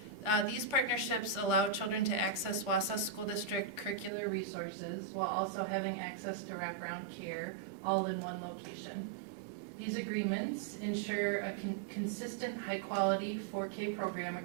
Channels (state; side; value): drops out; left; at 4.1 s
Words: These partnerships allow children to access Wausau School District curricular resources while also having access to wraparound care all in one location. These agreements ensure a consistent, high-quality 4K program